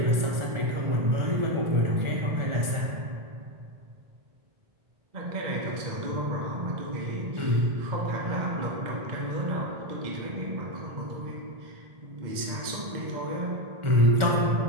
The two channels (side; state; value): left; late; 1.4 ms